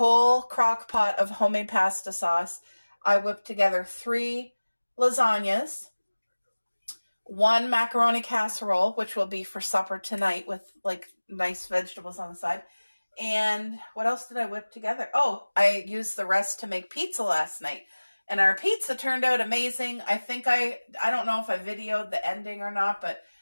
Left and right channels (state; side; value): inverted; both; correlation -1.00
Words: crock pot of homemade pasta sauce, I whipped together 3 lasagnas, 1 macaroni casserole, which will be for supper tonight with like nice vegetables on the side. And what else did I whip together? Oh, I used the rest to make pizza last night. And our pizza turned out amazing. I think I don't know if I videoed the ending or not, but